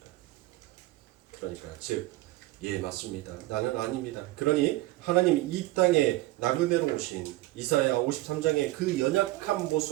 그러니까 즉, 예 맞습니다. 나는 아닙니다. 그러니 하나님이 이 땅에 나그네로 오신 이사야 53장의 그 연약한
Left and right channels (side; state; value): left; quieter; 18.1 dB